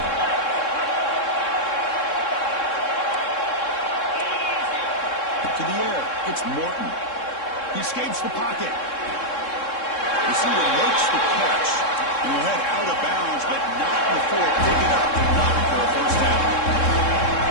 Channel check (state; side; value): late; right; 3.7 ms